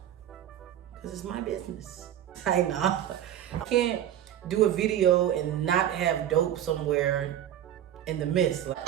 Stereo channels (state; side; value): quieter; left; 11.1 dB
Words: Because it's my business. I know. I can't do a video and not have dope somewhere in the midst.